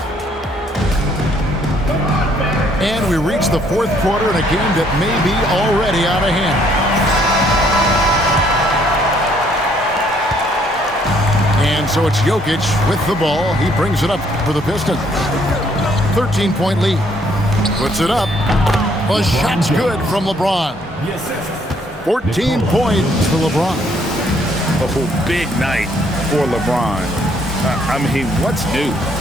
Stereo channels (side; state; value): both; normal; correlation 0.66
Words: And we reach the fourth quarter in a game that may be already out of hand. And so it's Jokic with the ball. He brings it up for the Pistons. 13-point lead. Puts it up. The shot's good from LeBron. 14 points for LeBron. Oh, big night for LeBron. I mean, what's new?